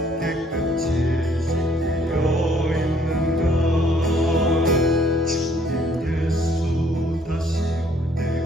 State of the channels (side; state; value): both; normal; correlation 0.63